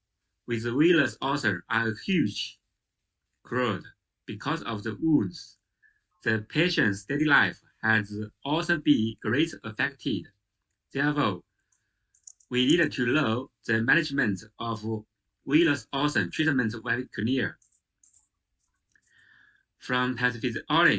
with venous ulcer are a huge crowd because of the wounds. The patient's daily life has also been greatly affected. Therefore, we need to know the management of venous ulcer treatment very clear. From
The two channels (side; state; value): both; identical; correlation 1.00